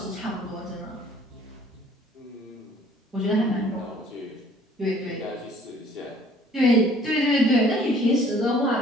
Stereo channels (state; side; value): normal; both; correlation 0.56